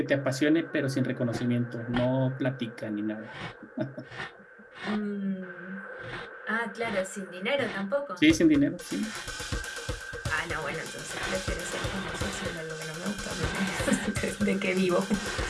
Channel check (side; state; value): both; identical; correlation 1.00